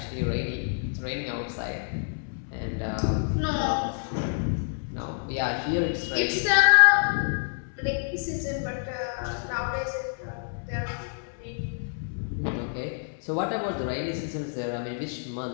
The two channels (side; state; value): right; silent; 59 dB below the other